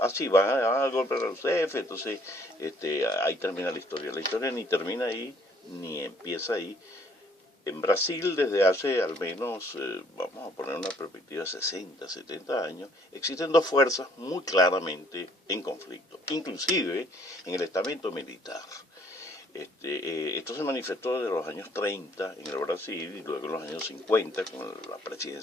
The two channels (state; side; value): normal; both; correlation 0.62